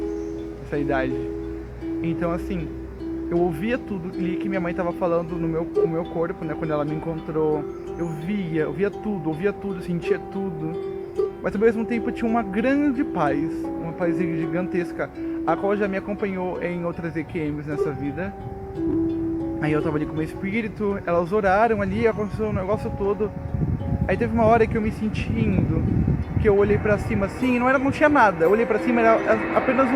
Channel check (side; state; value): both; identical; correlation 1.00